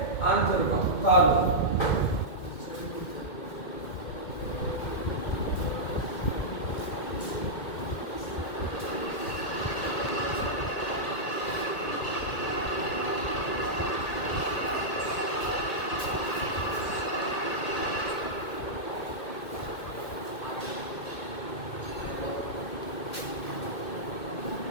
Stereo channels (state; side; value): late; right; 2.2 ms